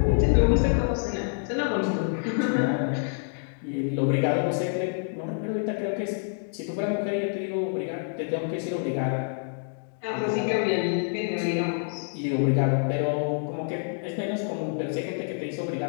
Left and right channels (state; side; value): silent; right; digital silence